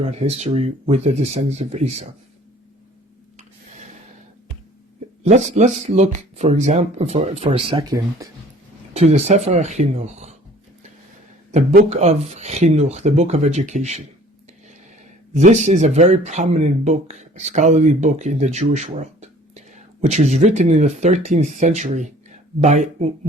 history with the descendants of Esav. Let's look, for example, for a second, to the Sefer HaChinuch, the book of Chinuch, the book of education. This is a very prominent book, a scholarly book in the Jewish world, which was written in the 13th century by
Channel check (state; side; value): normal; both; correlation 0.51